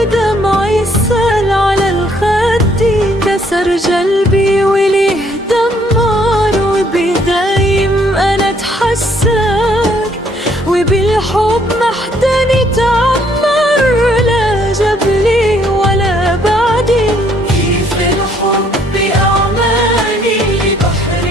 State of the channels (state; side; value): normal; both; correlation 0.66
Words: سال على الخد، كسر جلبي وليه دمار، وبدايم أنا اتحسر، وبالحب محدني تعمر، لا جبلي ولا بعدي. كيف الحب أعماني